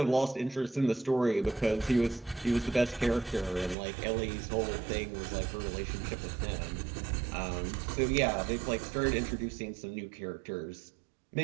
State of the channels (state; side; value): drops out; left; at 3.8 s